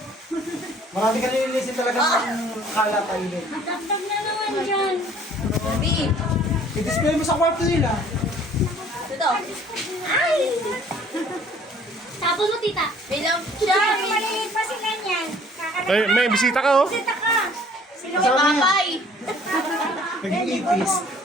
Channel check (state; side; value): normal; both; correlation 0.55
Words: Marami ka nililisin talaga ng kalat tayo din. Natagtag na naman dyan. Kurumi! I-display mo sa kwarto nila. Ito. Ay! Tapos mo, tita. Bilang siya. Maliit pa sila niyan. Ay, may bisita ka oh. Bisita ka. Sino Si Papay. Naging ipis.